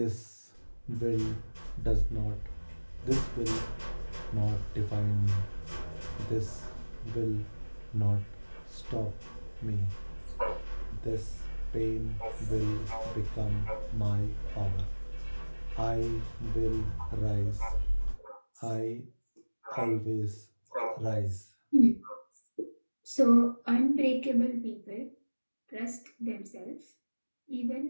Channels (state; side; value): inverted; both; correlation -1.00